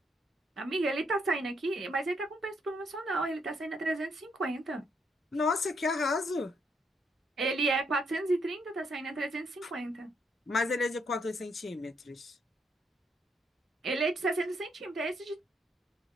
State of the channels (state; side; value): normal; both; correlation 0.74